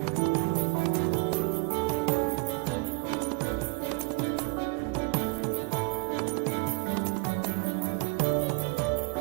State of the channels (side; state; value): left; quieter; 30.4 dB